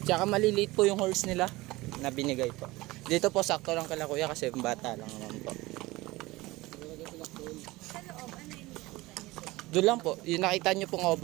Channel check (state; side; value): quieter; left; 20.2 dB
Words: Tsaka maliliit po yung horse nila na binigay po. Dito po sakto lang kala kuya kasi bata lang naman po. Sa loob, ano yung nakita niyo? Doon lang po, yung nakita nyo pong